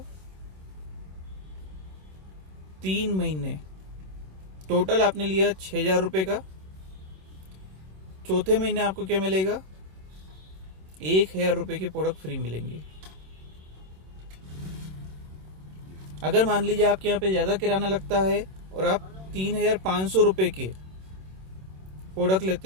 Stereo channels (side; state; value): left; late; 26 ms